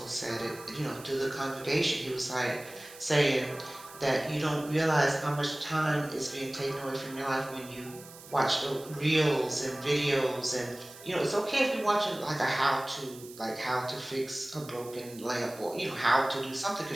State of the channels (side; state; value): right; noise; hiss, 18 dB below the sound